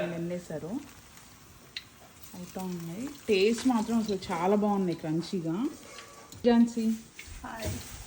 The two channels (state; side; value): identical; both; correlation 1.00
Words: ఎన్ని వేసారు, అవుతా ఉన్నాయి. టేస్ట్ మాత్రం అసలు చాలా బాగున్నాయి, క్రంచీగా. Jhansi hi.